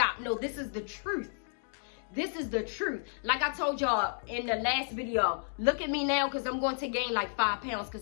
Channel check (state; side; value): silent; right; digital silence